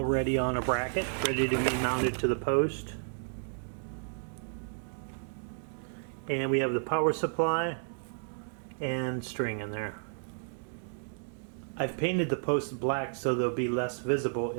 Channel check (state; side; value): silent; left; digital silence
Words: on a bracket, ready to be mounted to the post. And we have the power supply and string in there. I've painted the posts black so they'll be less visible